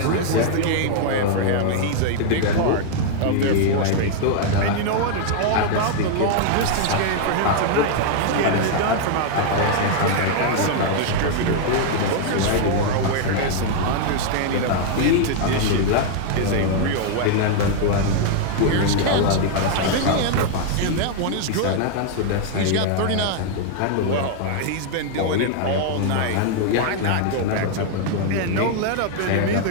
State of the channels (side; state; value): both; different; correlation 0.00